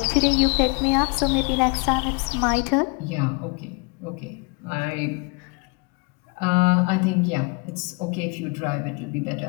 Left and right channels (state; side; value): quieter; right; 30.8 dB